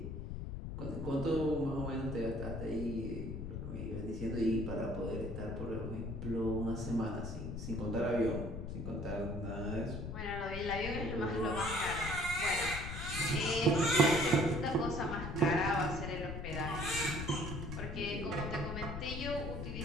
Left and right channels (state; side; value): noise; left; rumble, 6 dB below the sound